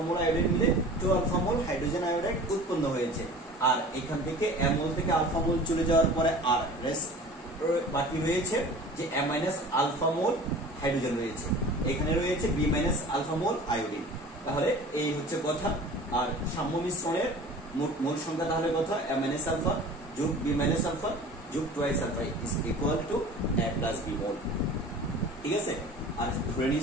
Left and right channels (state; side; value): normal; both; correlation 0.41